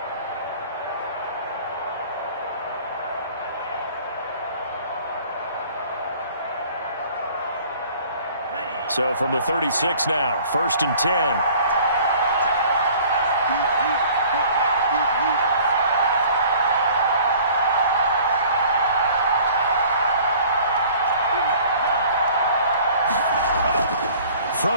So from the 36 now, 1st and 10.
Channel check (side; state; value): both; inverted; correlation -0.51